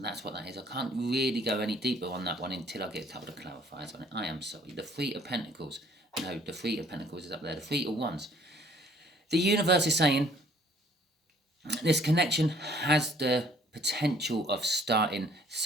what that is. I can't really go any deeper on that one until I get a couple of clarifiers on it. I am sorry. The Three of Pentacles. No, the Three of Pentacles is up there. The Three of Wands. The universe is saying this connection has the potential of starting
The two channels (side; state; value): both; normal; correlation 0.59